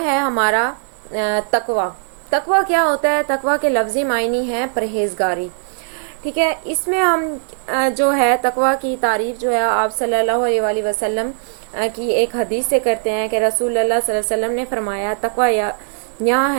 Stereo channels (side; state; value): left; silent; 62 dB below the other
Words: ہے ہمارا تقوی۔ تقوی کیا ہوتا ہے؟ تقوی کے لفظی معنی ہے پرہیزگاری، ٹھیک ہے۔ اس میں ہم جو ہے تقوی کی تعریف جو ہے آپ صلی اللہ علیہ وآلہ وسلم کی ایک حدیث سے کرتے ہیں کہ رسول اللہ صلی اللہ علیہ وسلم نے فرمایا تقوی یہاں